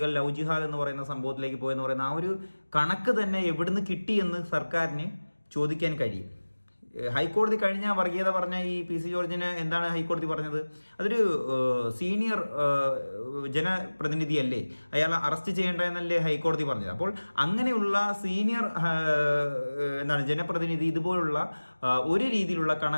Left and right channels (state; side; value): inverted; both; correlation -1.00